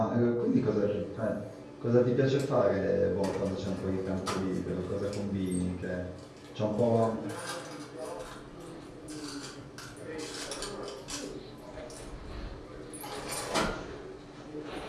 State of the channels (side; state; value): both; identical; correlation 1.00